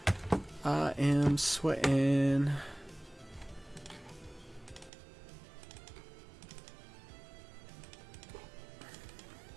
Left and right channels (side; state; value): left; drops out; at 4.9 s